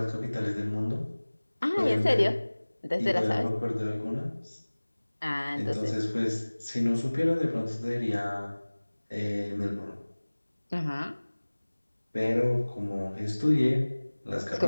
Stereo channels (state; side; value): inverted; both; correlation -1.00